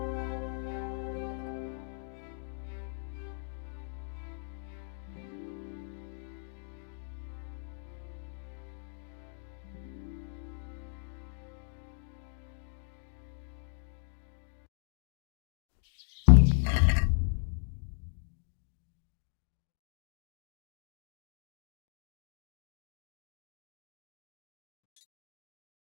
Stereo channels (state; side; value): silent; right; 53 dB below the other